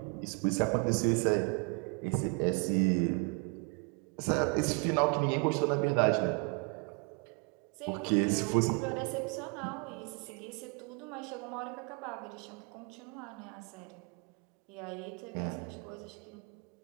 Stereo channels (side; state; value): left; quieter; 33.2 dB